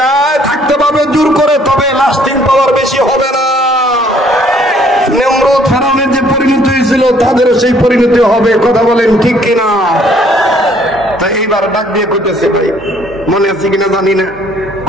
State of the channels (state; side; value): normal; both; correlation 0.62